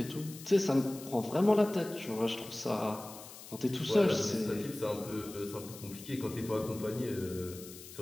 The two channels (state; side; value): noise; left; hiss, 15 dB below the sound